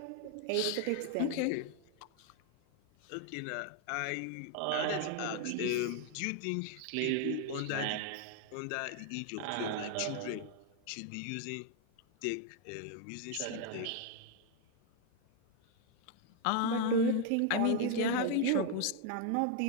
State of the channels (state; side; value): different; both; correlation 0.01